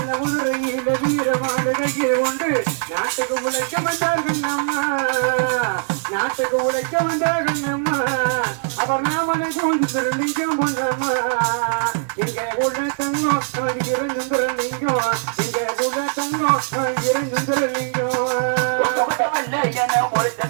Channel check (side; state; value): left; silent; digital silence